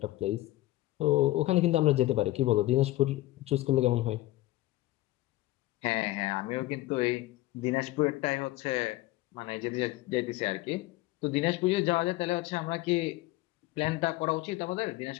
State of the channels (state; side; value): quieter; right; 17.4 dB